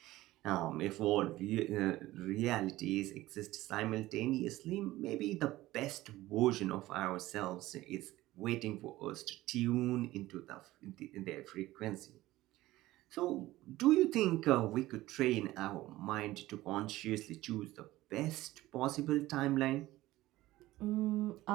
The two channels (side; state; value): left; quieter; 17.0 dB